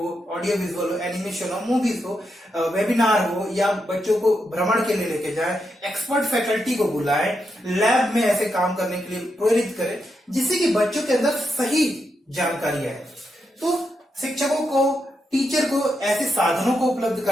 ऑडियो विजुअल हो, एनिमेशन हो, मूवीज हो, वेबिनार हो, या बच्चों को भ्रमण के लिए लेके जाए, एक्सपर्ट फैकल्टी को बुलाएं, लैब में ऐसे काम करने के लिए प्रेरित करें, जिससे कि बच्चों के अंदर सही जानकारी आए। तो शिक्षकों को, टीचर को ऐसे साधनों को उपलब्ध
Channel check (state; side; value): normal; both; correlation 0.84